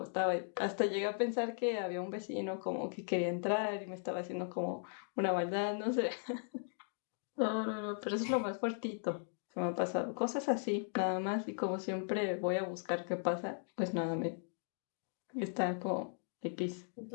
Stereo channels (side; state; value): right; silent; digital silence